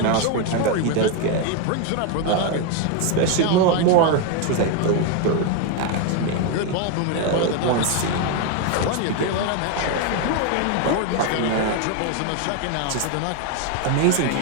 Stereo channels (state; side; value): different; both; correlation 0.01